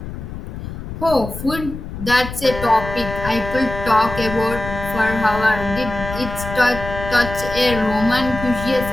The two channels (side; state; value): left; noise; rumble, 8 dB below the sound